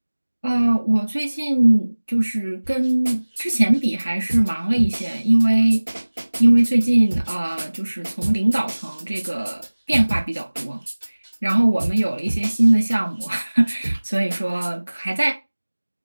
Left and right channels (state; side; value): inverted; both; correlation -1.00